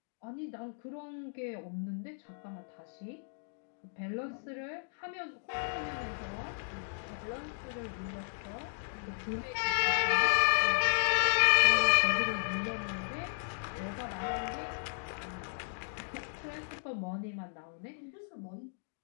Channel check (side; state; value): right; silent; digital silence